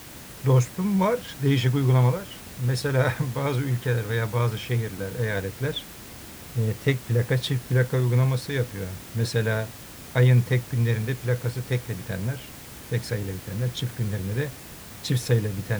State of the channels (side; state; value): both; identical; correlation 1.00